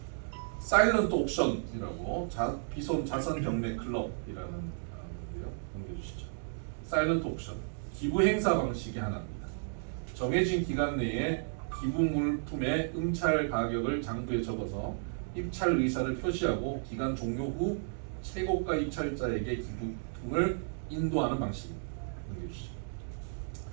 사일런트 옥션이라고 비손 자선 경매 클럽이라는 건데요. 넘겨주시죠. 사일런트 옥션 기부 행사 방식의 하나입니다. 정해진 기간 내에 기부 물품의 응찰 가격을 장부에 적어서 입찰 의사를 표시하고 기간 종료 후 최고가 입찰자에게 기부금을 인도하는 방식입니다. 넘겨주시죠.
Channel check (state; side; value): silent; left; digital silence